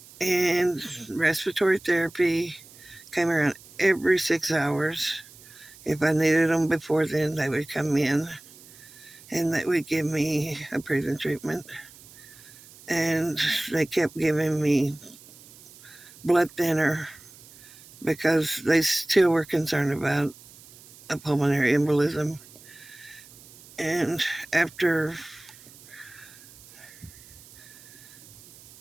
and respiratory therapy came around every 6 hours. If I needed them before then, they would come in and they would give me a breathing treatment. And they kept giving me blood thinner because they still were concerned about a pulmonary embolism. And after,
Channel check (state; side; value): noise; right; hiss, 22 dB below the sound